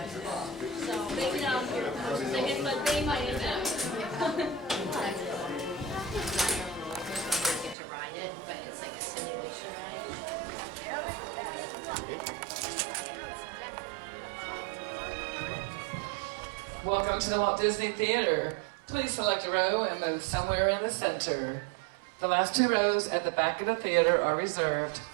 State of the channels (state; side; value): drops out; left; at 7.8 s